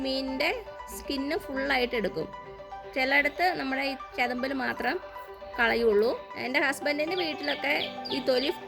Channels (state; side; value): identical; both; correlation 1.00